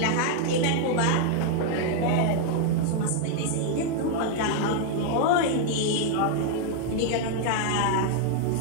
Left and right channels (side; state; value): both; different; correlation 0.00